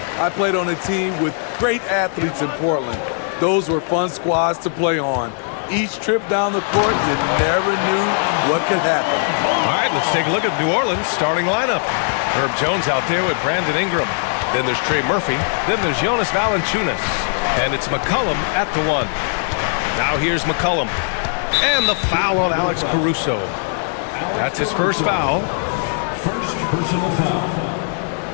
I played on a team with great athletes in Portland. Those were fun squads to play on. Each trip down the court, you never knew what could happen. All right, let's take a look at New Orleans' starting lineup. Herb Jones out there with Brandon Ingram. Then there's Trey Murphy. Then there's Jonas Valanciunas. And it's McCollum at the one. Now here's McCollum. And the foul on Alex Caruso. That's his first foul. First personal foul.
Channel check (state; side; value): silent; right; digital silence